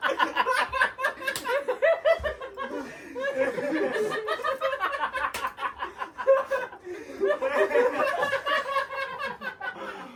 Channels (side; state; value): both; identical; correlation 1.00